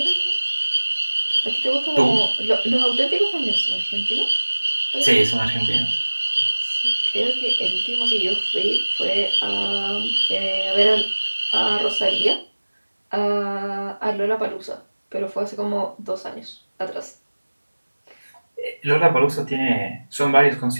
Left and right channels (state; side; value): inverted; both; correlation -1.00